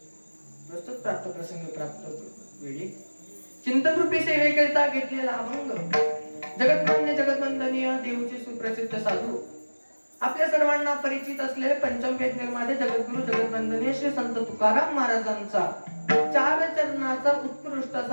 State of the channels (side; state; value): both; inverted; correlation -1.00